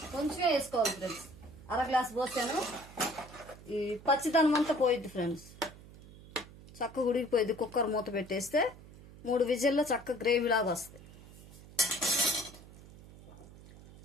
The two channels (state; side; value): noise; right; hum, 19 dB below the sound